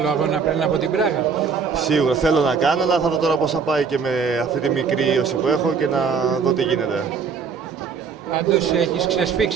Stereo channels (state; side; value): quieter; left; 5.8 dB